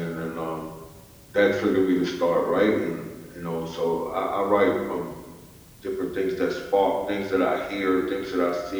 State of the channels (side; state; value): both; identical; correlation 1.00